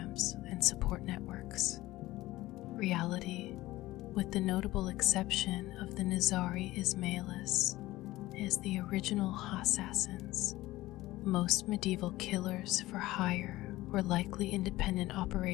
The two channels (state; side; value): quieter; right; 17.5 dB